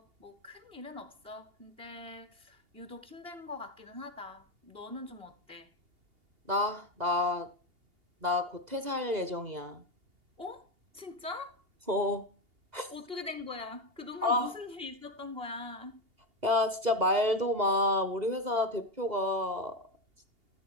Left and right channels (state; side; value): late; left; 2.8 ms